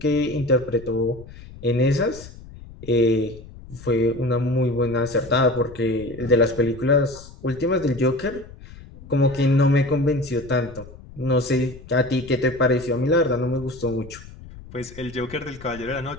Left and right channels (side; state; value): left; noise; rumble, 17 dB below the sound